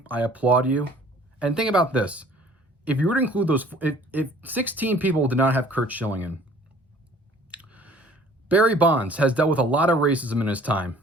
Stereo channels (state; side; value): normal; both; correlation 0.52